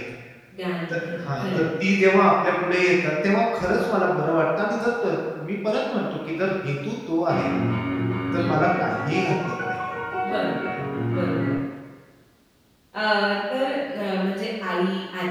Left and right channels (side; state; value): both; identical; correlation 1.00